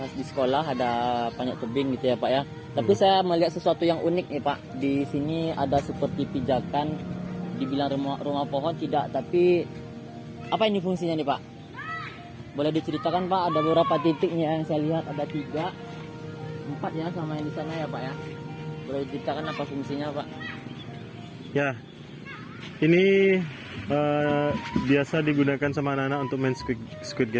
di sekolah, ada panjat tebing gitu ya Pak ya. Tapi saya melihat sesuatu yang unik nih Pak. Di sini ada seperti pijakan, dibilang rumah pohon tidak, tapi apa ini fungsinya nih Pak? Boleh diceritakan Pak? Ada beberapa titiknya yang saya lihat, ada 3, 4 ya sama yang di sana ya Pak ya. Boleh diceritakan apa fungsinya Pak? Ya, ini biasa digunakan sama anak-anak untuk main squid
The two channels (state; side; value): identical; both; correlation 1.00